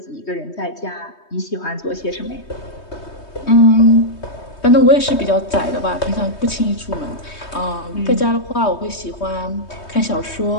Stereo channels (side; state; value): right; late; 3.2 ms